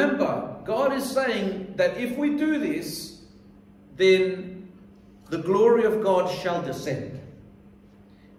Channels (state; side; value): identical; both; correlation 1.00